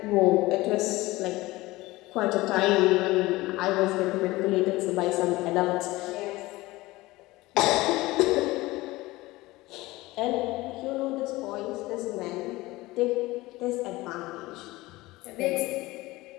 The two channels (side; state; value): right; quieter; 19.7 dB